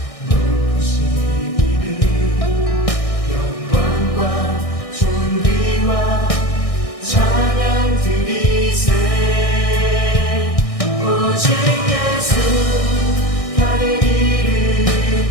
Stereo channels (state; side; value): late; right; 1.6 ms